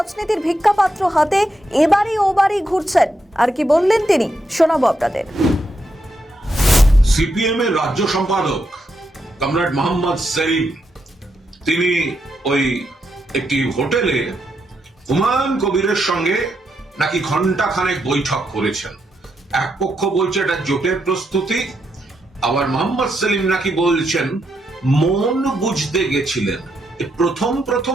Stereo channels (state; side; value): normal; both; correlation 0.81